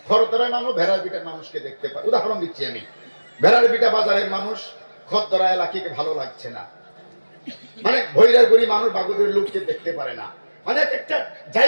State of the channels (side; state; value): both; inverted; correlation -1.00